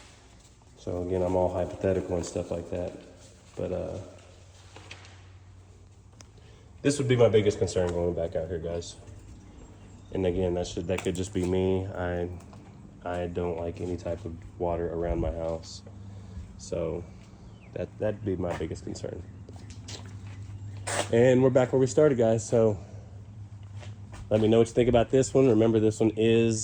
So again, I'm all hypothetical and stuff like that. But this would be my biggest concern going back out here, guys. And again, that could just be me. I don't like any type of water around my house. So that'd be my biggest concern. And we're back where we started, guys. So let me know what you think about this one. Remember, this one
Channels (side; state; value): both; identical; correlation 1.00